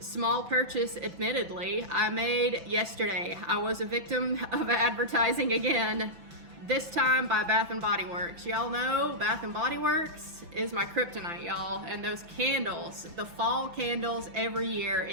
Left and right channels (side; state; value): left; late; 5.9 ms